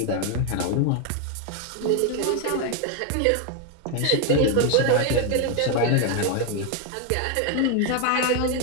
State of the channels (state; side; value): different; both; correlation 0.01